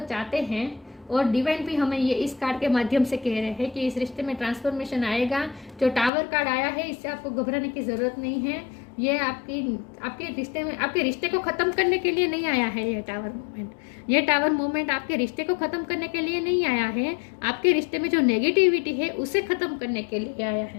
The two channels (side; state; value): right; drops out; at 6.1 s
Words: चाहते हैं, और डिवाइन भी हमें ये इस कार्ड के माध्यम से कह रहे हैं कि इस रिश्ते में ट्रांसफॉर्मेशन आएगा। जो टावर कार्ड आया है, इससे आपको घबराने की ज़रूरत नहीं है। ये आपके रिश्ते में, आपके रिश्ते को ख़त्म करने के लिए नहीं आया है ये टावर मूवमेंट। ये टावर मूवमेंट आपके रिश्ते को ख़त्म करने के लिए नहीं आया है, आपके रिश्ते में जो नेगेटिविटी है उसे ख़त्म करने के लिए आया